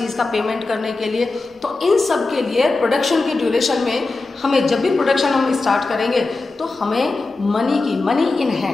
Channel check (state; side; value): quieter; right; 3.5 dB